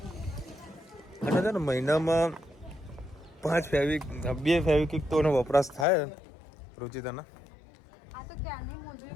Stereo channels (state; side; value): drops out; right; at 5.9 s